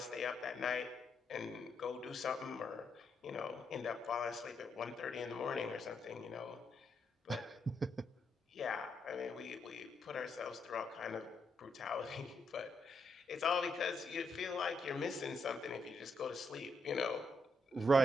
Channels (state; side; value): normal; both; correlation 0.79